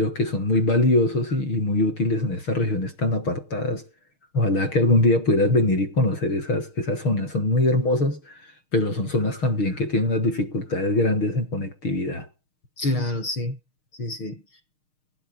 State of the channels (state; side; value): late; right; 6.5 ms